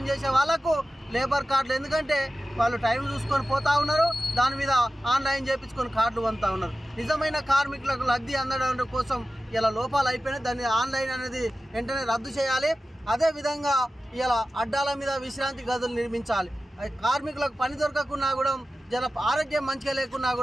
వాళ్ళకు లేబర్ కార్డులు, ఎందుకంటే వాళ్ళు టైం చూసుకొని పోతా ఉన్నారు, దాని మీద ఆన్లైన్ చేయించుకొని కార్డులు పొందుతూ ఉన్నారు. నిజమైన కార్మికులకు లబ్ధి అందడం కోసం ఇలా లోపాలు అయిపోయినాయి. దాన్ని ఆన్లైన్ అనేది వెంటనే రద్దు చేయాలి. అదేవిధంగా ఇలా అడ్డాల మీద విశ్రాంతి గదులు నిర్మించాలి. కార్మికులకు పని దొరకకున్నా కూడా జన ఆరోగ్యం మంచిగా లేకున్నా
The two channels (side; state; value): both; normal; correlation 0.94